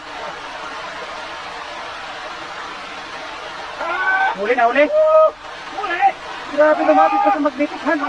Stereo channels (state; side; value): noise; left; rumble, 29 dB below the sound